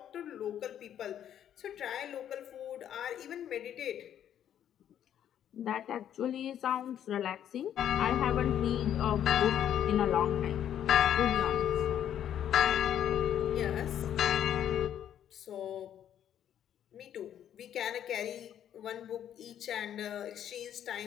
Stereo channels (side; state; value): right; quieter; 10.2 dB